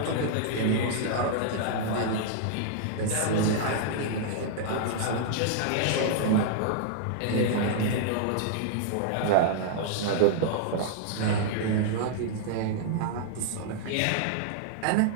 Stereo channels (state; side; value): different; both; correlation -0.01